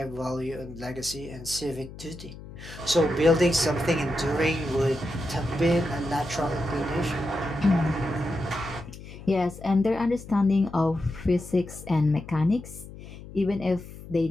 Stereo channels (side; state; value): left; noise; hum, 15 dB below the sound